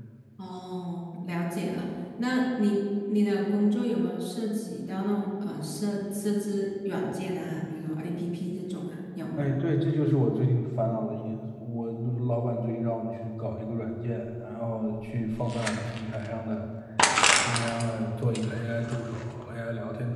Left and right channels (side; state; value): both; identical; correlation 1.00